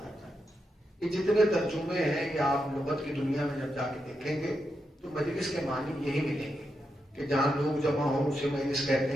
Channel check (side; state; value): both; normal; correlation 0.85